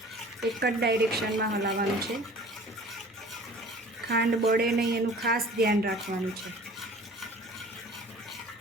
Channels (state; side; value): normal; both; correlation 0.46